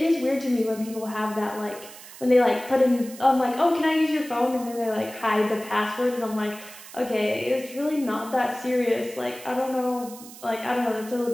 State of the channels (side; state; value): right; noise; hiss, 17 dB below the sound